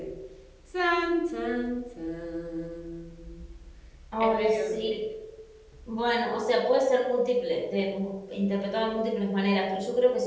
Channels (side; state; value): both; identical; correlation 1.00